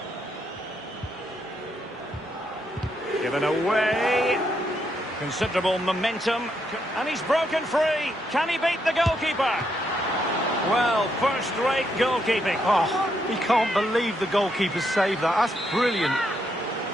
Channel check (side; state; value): both; normal; correlation 0.78